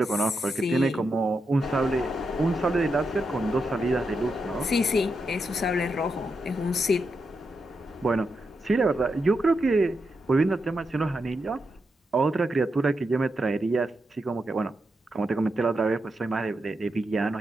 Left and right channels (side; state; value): both; normal; correlation 0.85